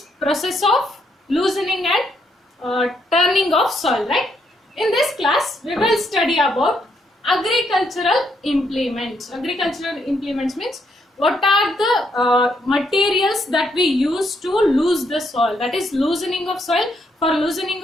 process of loosening and turning of soil, right? In this class we will study about agricultural implements. Agricultural implements means what are the materials that we use to loose the soil, that is loosening of soil. For loosening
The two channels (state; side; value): normal; both; correlation 0.75